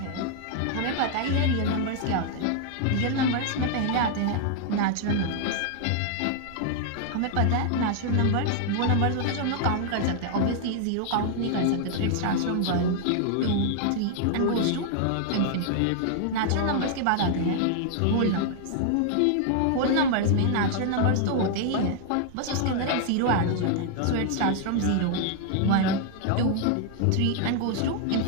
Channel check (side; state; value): both; different; correlation -0.01